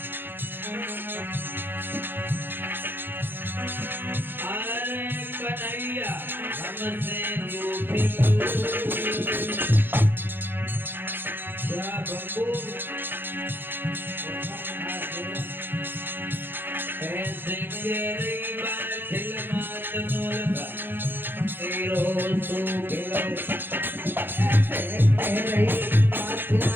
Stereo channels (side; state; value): left; late; 0.10 ms